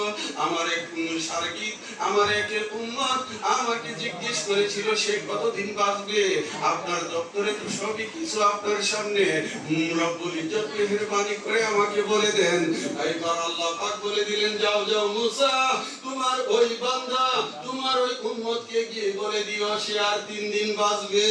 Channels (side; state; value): both; identical; correlation 1.00